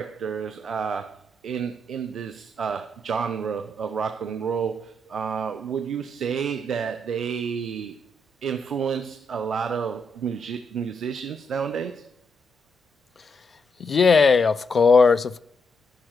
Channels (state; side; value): normal; both; correlation 0.78